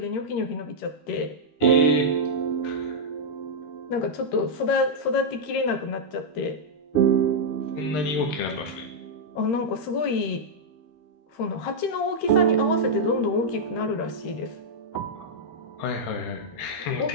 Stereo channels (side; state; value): right; late; 13 ms